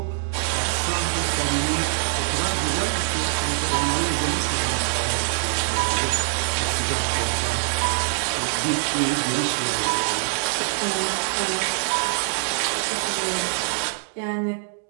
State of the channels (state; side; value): silent; left; digital silence